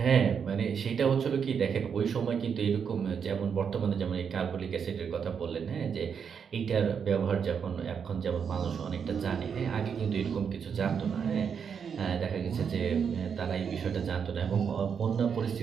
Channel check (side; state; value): left; quieter; 6.9 dB